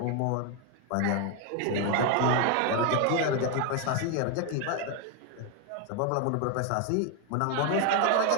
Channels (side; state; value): both; different; correlation 0.01